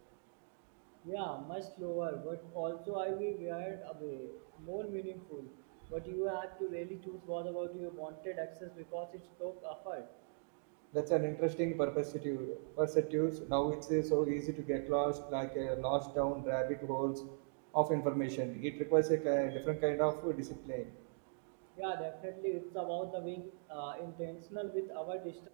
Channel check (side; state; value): left; silent; digital silence